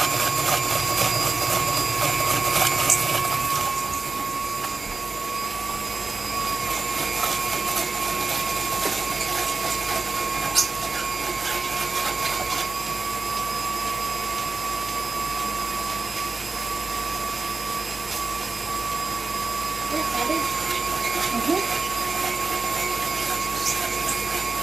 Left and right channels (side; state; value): left; quieter; 3.9 dB